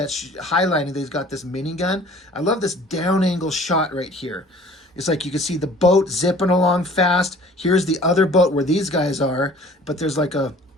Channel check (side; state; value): both; normal; correlation 0.50